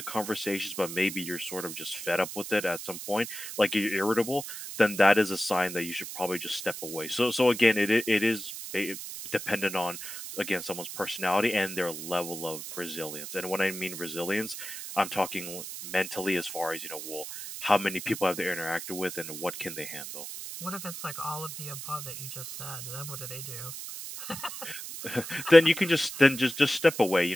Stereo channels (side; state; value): right; noise; hiss, 9 dB below the sound